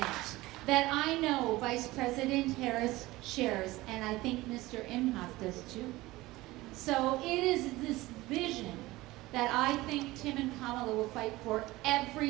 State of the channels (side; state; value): left; quieter; 19.0 dB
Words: that I know Vice President Harris shares, and I think Mr. Emhoff does too. So it is this vision that I think Tim and Kamala will fight for every